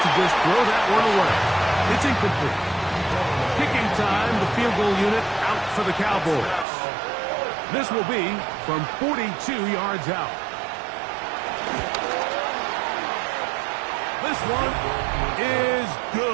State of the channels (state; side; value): drops out; left; at 6.7 s